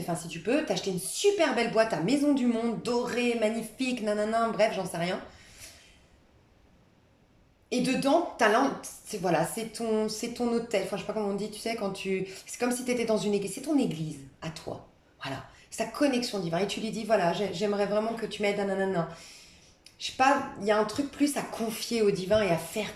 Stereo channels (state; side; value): identical; both; correlation 1.00